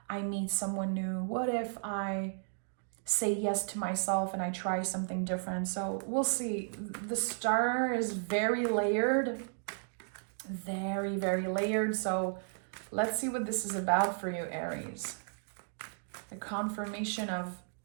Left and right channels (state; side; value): silent; left; digital silence